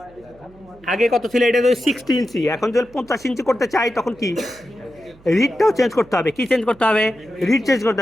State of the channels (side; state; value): right; noise; hum, 26 dB below the sound